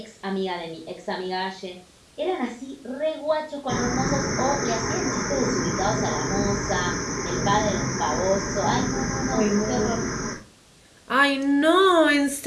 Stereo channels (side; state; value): both; identical; correlation 1.00